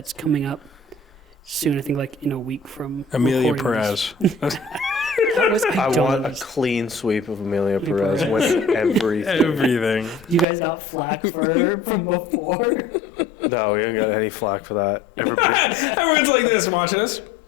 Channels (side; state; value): right; drops out; at 10.5 s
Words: coming up soon? I think like in a week from Amelia recording this. Perez. That was, I don't want a understand. clean sweep of Amelia Perez. Perez winning everything. Everything. You guys got flack from before. No, we haven't got any flack for that. Everyone's like this watching us.